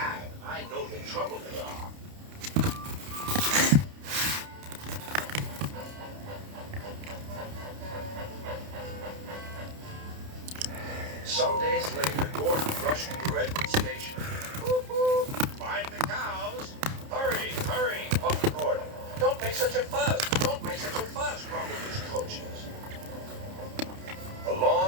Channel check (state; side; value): late; left; 30 ms